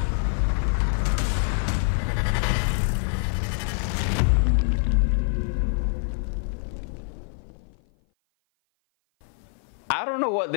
I don't know what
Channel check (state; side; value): silent; right; 55 dB below the other